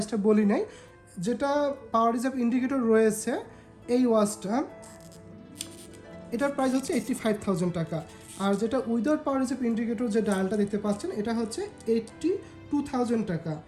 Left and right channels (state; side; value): identical; both; correlation 1.00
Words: বলি নাই। যেটা পাওয়ার রিজার্ভ ইন্ডিকেটর রয়েছে এই ওয়াচটা, এটার প্রাইস হচ্ছে 85,000 টাকা। আর যেটা উইদাউট পাওয়ার রিজার্ভ ইন্ডিকেটর যে ডায়ালটা দেখতে পাচ্ছেন এটা হচ্ছে 82,000 টাকা,